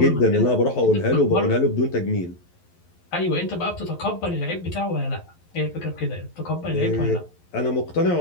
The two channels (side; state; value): right; late; 11 ms